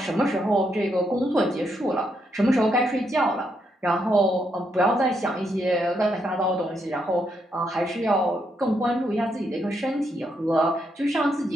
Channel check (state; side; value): normal; both; correlation 0.78